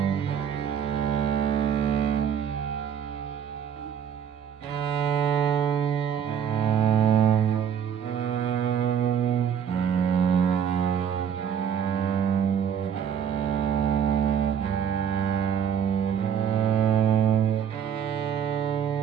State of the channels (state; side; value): quieter; left; 8.4 dB